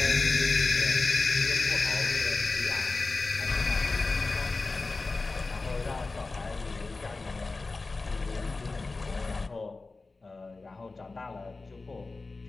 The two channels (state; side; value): quieter; right; 3.6 dB